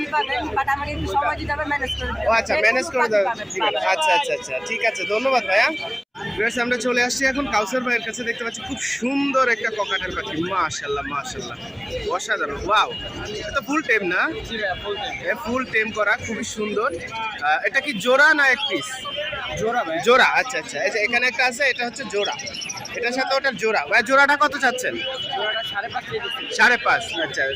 পাবেন, বাট আমাকে একটু সময় দিতে হবে ম্যানেজ করে দিতে ও আচ্ছা, ম্যানেজ করে দেবেন। ঠিক আছে। আচ্ছা আচ্ছা আচ্ছা, ঠিক আছে, ধন্যবাদ ভাইয়া। বেশ, আমরা চলে আসছি এখন কাউসার ভাইয়ের কাছে। দেখতে পাচ্ছি খুব সুন্দর একটা ককাটেল পাখি। মাশাআল্লাহ মাশাআল্লাহ, অসাধারণ। ওয়াও, এটা ফুল টেম না? ফুল টেম করা, খুবই সুন্দর। এটা কি জোড়া না এক পিস? জোড়া ভাই। জোড়া। আচ্ছা আচ্ছা, এই যে এখানে একটা আছে, এটা হচ্ছে জোড়া। এটার সাথে ওটার জোড়া। ভাই জোড়াটা কত চাচ্ছেন? জোড়াটা 5.5 5.5। আচ্ছা,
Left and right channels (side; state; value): both; identical; correlation 1.00